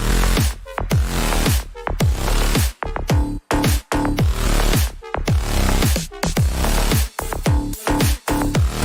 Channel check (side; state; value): both; identical; correlation 1.00